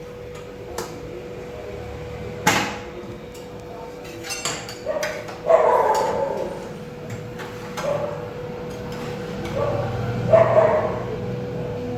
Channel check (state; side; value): identical; both; correlation 1.00